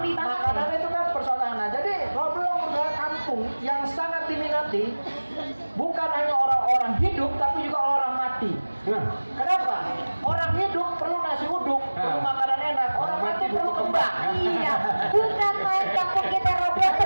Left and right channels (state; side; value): inverted; both; correlation -1.00